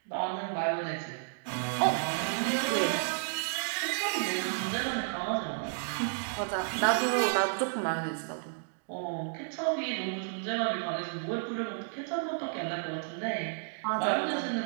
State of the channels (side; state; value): left; silent; digital silence